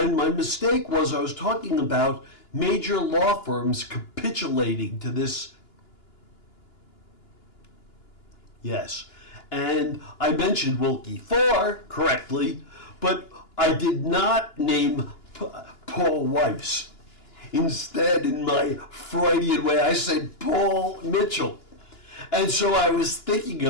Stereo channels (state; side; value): late; right; 2.9 ms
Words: my mistake was I was talking about major law firms capitulating to this. Yes. And I mentioned Wilkie 4 correctly, but I did not name Paul Weiss. Instead, in my Freudian way, I said Paul Mitchell. And so I was thinking